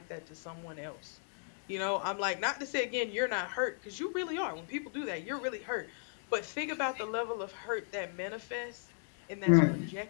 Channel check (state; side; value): silent; right; digital silence